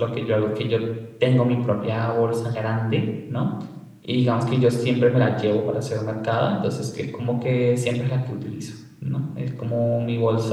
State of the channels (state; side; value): identical; both; correlation 1.00